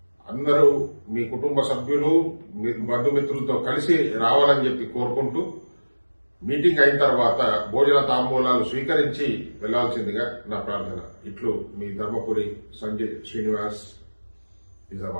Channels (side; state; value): both; inverted; correlation -1.00